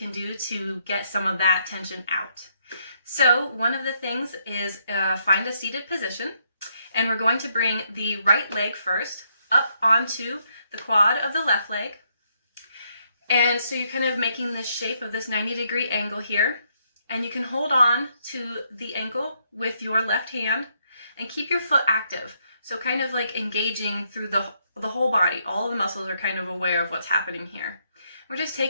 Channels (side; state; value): both; inverted; correlation -0.74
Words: do to get some of that tension out. So one of the things is find a seated position, and we're going to bring the right leg first up onto the quad of the left leg. And so you're kind of making this shape of this 90-degree angle here, and you can hold on to the ankle with your left hand and keep your foot active. So kind of like engaging through the whole body. All of the muscles are kind of aware of what's happening here. We're just